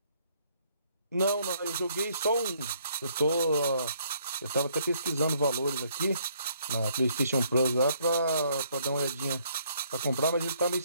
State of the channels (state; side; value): inverted; both; correlation -0.67